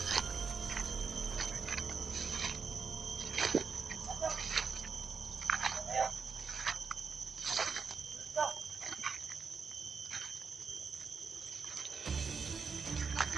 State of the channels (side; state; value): left; quieter; 5.4 dB